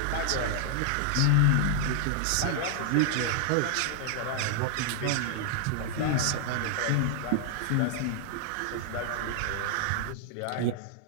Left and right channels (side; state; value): both; different; correlation 0.00